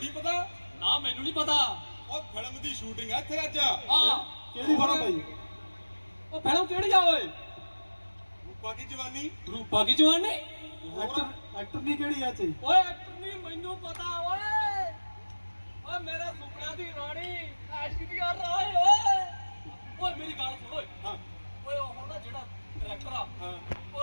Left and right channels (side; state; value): both; inverted; correlation -1.00